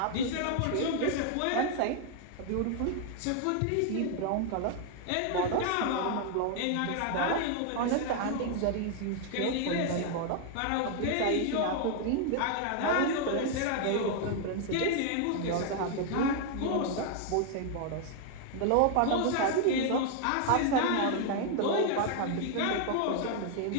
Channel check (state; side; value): different; both; correlation 0.00